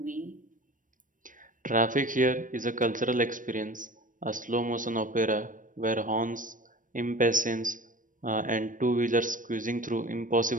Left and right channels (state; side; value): late; left; 0.38 ms